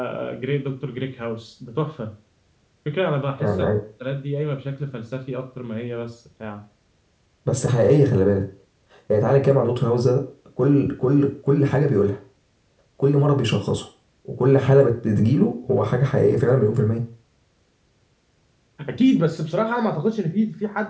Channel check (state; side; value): identical; both; correlation 1.00